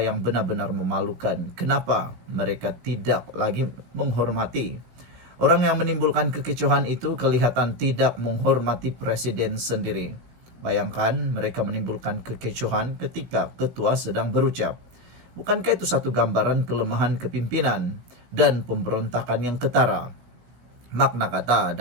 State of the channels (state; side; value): late; left; 17 ms